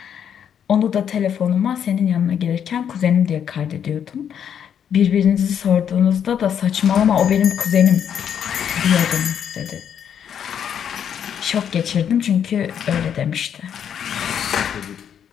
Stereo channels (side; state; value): right; quieter; 8.6 dB